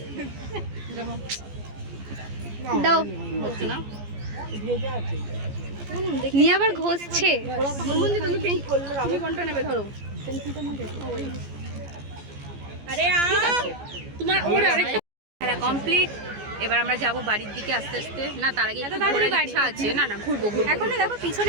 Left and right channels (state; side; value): late; left; 14 ms